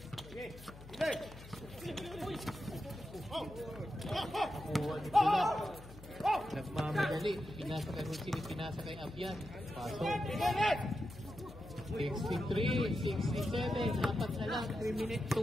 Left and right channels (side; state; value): left; noise; hum, 17 dB below the sound